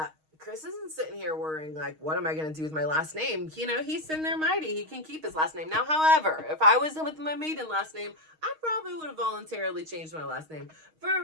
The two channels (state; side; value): late; left; 6.4 ms